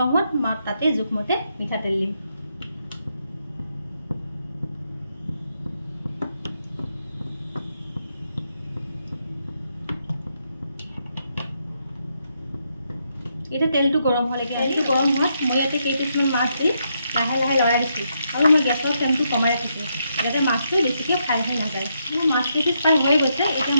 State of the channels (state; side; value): inverted; both; correlation -0.79